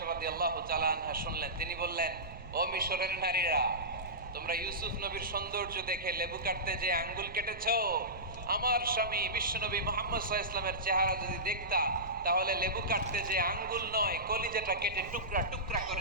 রাদিয়াল্লাহু তাআলা আনহা শুনলেন, তিনি বললেন, ও মিশরের নারীরা, তোমরা ইউসুফ নবীর সৌন্দর্য দেখে লেবু কাটতে যে আঙ্গুল কেটেছো, আমার স্বামী বিশ্বনবী মুহাম্মদ সাল্লাল্লাহু আলাইহি ওয়াসাল্লামের চেহারা যদি দেখতা, তাহলে লেবু কাটতে যে আঙ্গুল নয়, কলিজাটা কেটে টুকরা টুকরা করে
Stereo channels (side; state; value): right; noise; rumble, 15 dB below the sound